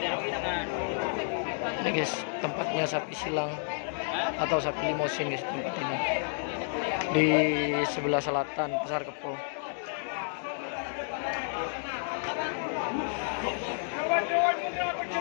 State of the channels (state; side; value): silent; right; digital silence